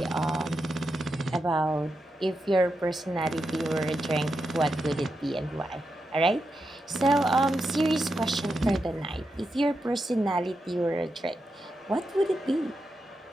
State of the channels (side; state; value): both; normal; correlation 0.87